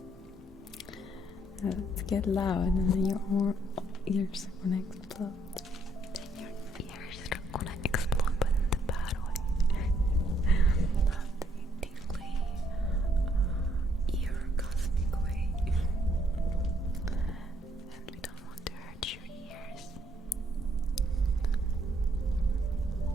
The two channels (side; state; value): both; normal; correlation 0.70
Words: To get loud and then your ears are gonna explode. Then your ears are gonna explode, but in the bad way. Not the tingly, orgasmic way. And we don't want to hurt your ears.